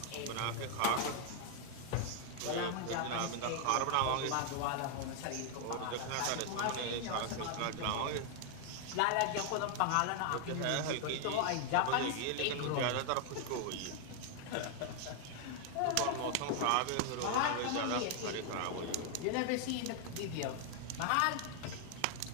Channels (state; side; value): different; both; correlation 0.00